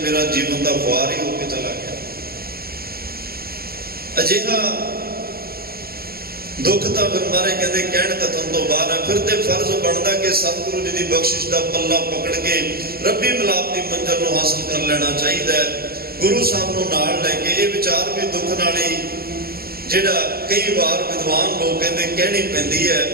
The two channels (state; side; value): late; left; 0.45 ms